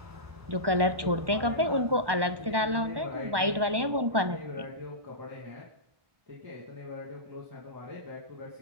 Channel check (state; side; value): late; left; 1.2 ms